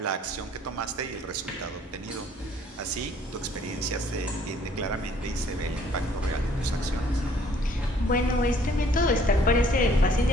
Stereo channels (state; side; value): normal; both; correlation 0.60